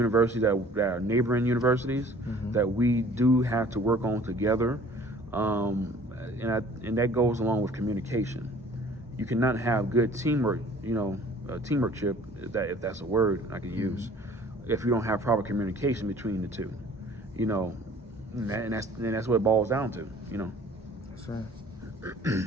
that are neighboring universities, that we do have to work on together. And that goes along with communication. You cannot have good teamwork, teamworkship, if that's a word I could use, if you don't have proper communication between the two, and that's what it boils down to, That's right.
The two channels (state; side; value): normal; both; correlation 0.51